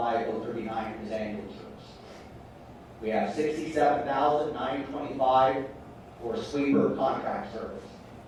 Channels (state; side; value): identical; both; correlation 1.00